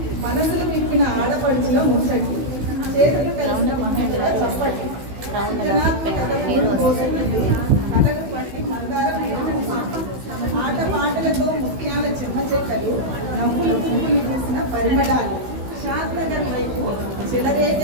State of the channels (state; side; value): late; left; 16 ms